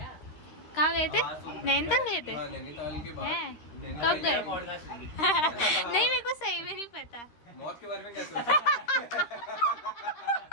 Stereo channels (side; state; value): right; late; 13 ms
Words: कहाँ गए थे? नैनीताल गए थे? नैनीताल के बाद कब गए? नहीं, मेरे को सही में नहीं पता। मौत के बारे में क्या